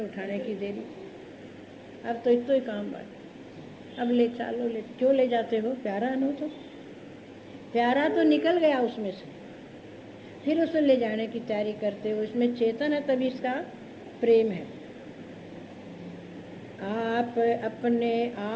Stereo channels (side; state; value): both; identical; correlation 1.00